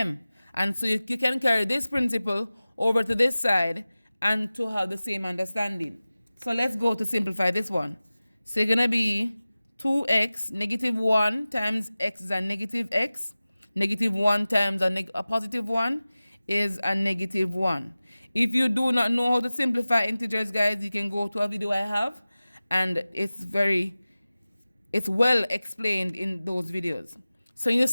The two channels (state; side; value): inverted; both; correlation -0.97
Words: And so you can carry this principle over to this side and to have the same understanding. So let's go to simplify this one. So it's going to be 2x, negative 1 times x is a negative x. Negative 1 times a positive 1 is a negative 1. If you do not know how to simplify integers, guys, you can go to a video I have, and it's well explained in those videos. So you